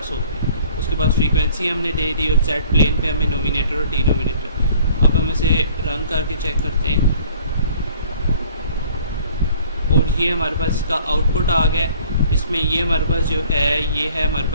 हो गया। उसके बाद फ्रीक्वेंसी हमने दे दी और जेड प्लेन पे हमें नोमिनेटर और डिनोमिनेटर। अब हम इसे रन करके चेक करते हैं और ये हमारे पास इसका आउटपुट आ गया। इसमें ये हमारे पास जो है ये है हमारे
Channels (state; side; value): inverted; both; correlation -0.53